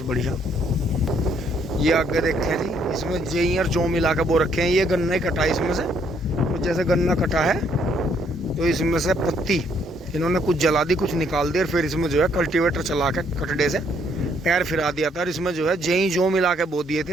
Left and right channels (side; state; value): both; normal; correlation 0.68